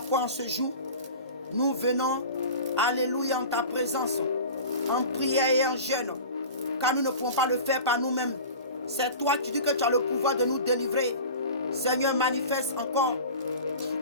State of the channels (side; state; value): both; inverted; correlation -0.37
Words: en ce jour. Nous venons, alléluia, en ta présence, en prière et en jeûne, car nous ne pouvons pas le faire par nous-mêmes. C'est toi qui dis que tu as le pouvoir de nous délivrer. Seigneur, manifeste encore